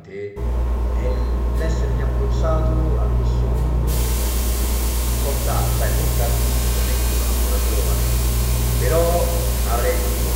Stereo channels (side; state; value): both; identical; correlation 1.00